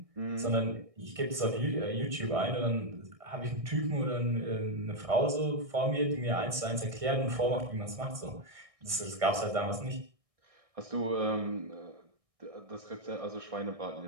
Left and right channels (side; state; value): left; late; 1.6 ms